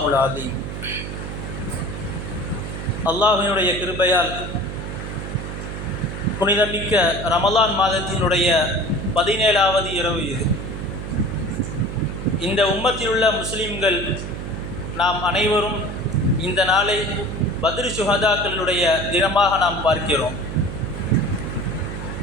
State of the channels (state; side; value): noise; right; hum, 7 dB below the sound